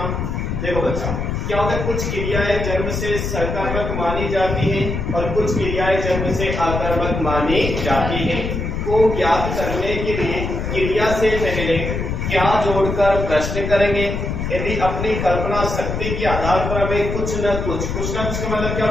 देखो बच्चा, क्या होता है, कुछ क्रियाएं जन्म से सकर्मक मानी जाती हैं और कुछ क्रियाएं जन्म से अकर्मक मानी जाती हैं। को ज्ञात करने के लिए क्रिया से पहले क्या जोड़कर प्रश्न करेंगे। यदि अपनी कल्पना शक्ति के आधार पर हमें कुछ न कुछ का मतलब क्या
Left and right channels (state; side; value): noise; left; rumble, 3 dB below the sound